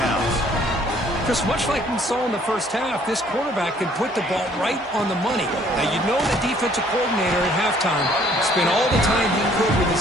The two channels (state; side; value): normal; both; correlation 0.60